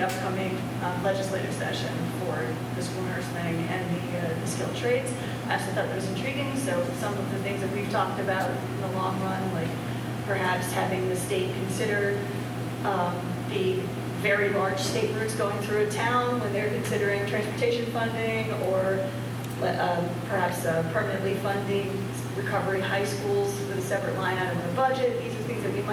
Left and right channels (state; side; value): identical; both; correlation 1.00